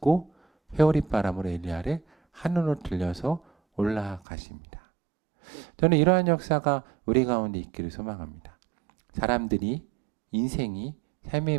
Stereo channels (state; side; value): drops out; left; at 4.2 s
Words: 회오리바람으로 엘리야를 하늘로 들려서 올라가십니다. 저는 이러한 역사가 우리 가운데 있기를 소망합니다. 사람들이 인생이